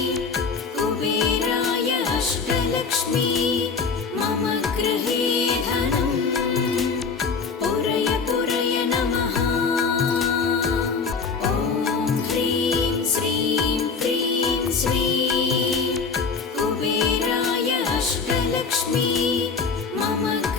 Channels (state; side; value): quieter; right; 5.1 dB